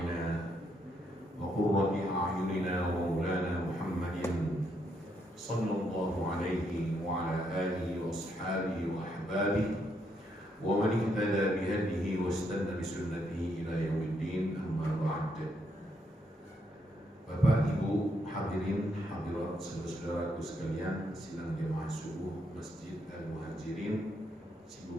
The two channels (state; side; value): normal; both; correlation 0.76